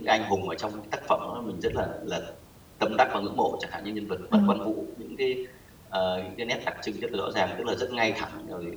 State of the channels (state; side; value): identical; both; correlation 1.00